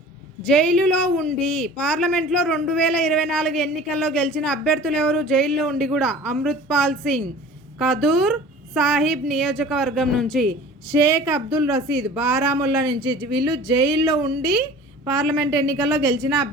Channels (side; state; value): both; normal; correlation 0.43